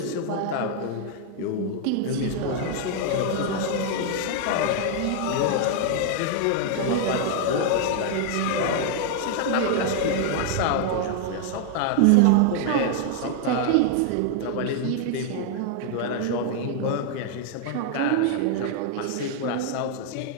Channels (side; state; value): both; different; correlation 0.00